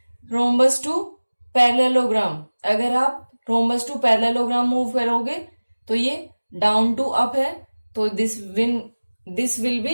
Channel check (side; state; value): both; inverted; correlation -1.00